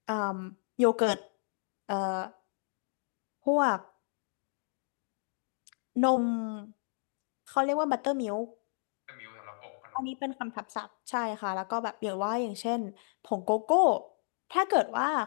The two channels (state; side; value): silent; right; digital silence